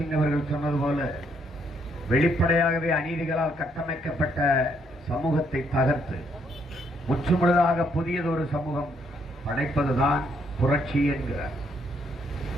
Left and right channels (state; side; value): normal; both; correlation 0.72